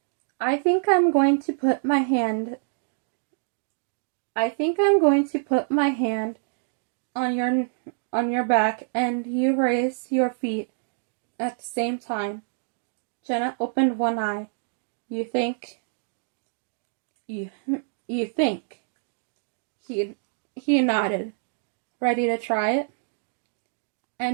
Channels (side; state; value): left; silent; digital silence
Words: I think I'm going to put my hand on your back and you raise your feet at the same time. Jenna opened one eye. You think? You think? He nodded. Ready to try it?